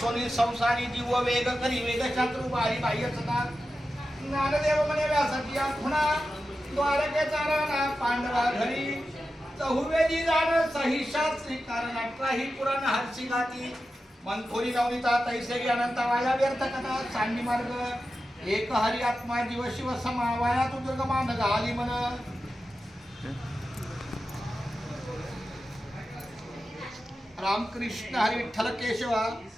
संसारी जीव वेग करी वेग शास्त्र बारी बाह्य सदा ज्ञानदेव म्हणे व्यासाची खुणा द्वारकेचा राणा पांडवा घरी चहुवेदी जाण सहिशास्त्री कारण 18 पुराण हरसी गाती मनथोरी नवनीता तैसेगी अनंत वाया व्यर्थ कथा सांडी मार्ग एक हरी आत्मा जीव शिव समा वाया तू दुर्गमान घाली मन रामकृष्ण हरी विठ्ठल केशवा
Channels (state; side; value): normal; both; correlation 0.92